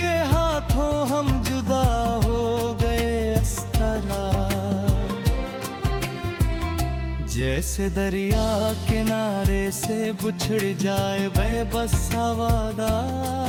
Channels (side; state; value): both; identical; correlation 1.00